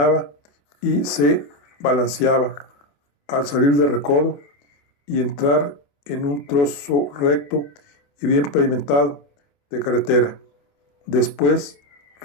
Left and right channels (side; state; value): right; late; 28 ms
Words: y se balanceaba al salir del recodo y entrar en un trozo recto y bien pavimentado de carretera. Después